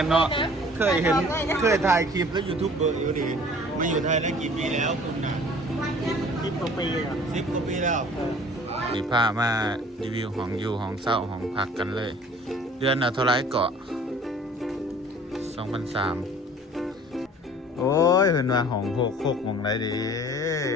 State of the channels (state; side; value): normal; both; correlation 0.49